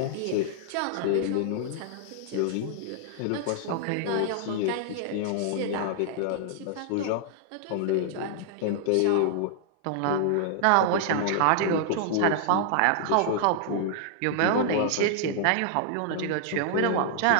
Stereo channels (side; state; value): both; different; correlation -0.01